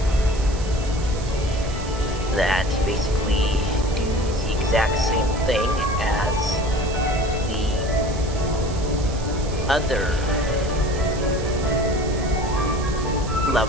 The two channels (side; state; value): right; noise; hiss, 15 dB below the sound